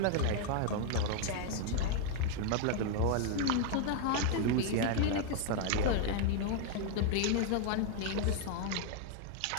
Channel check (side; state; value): both; different; correlation 0.01